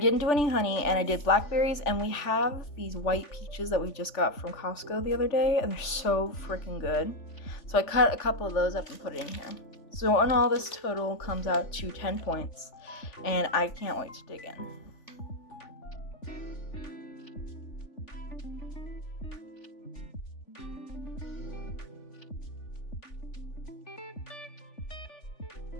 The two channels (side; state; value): right; late; 3.4 ms